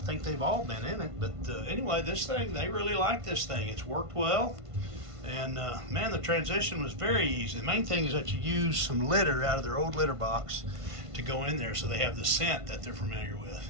they've all been in it, but anyway, this thing, they really like this thing. It's worked well, and man, the transition was very easy. The main thing is that you use some litter out of their old litter box to go in there so they have the scent that they're familiar with.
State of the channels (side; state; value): left; late; 1.5 ms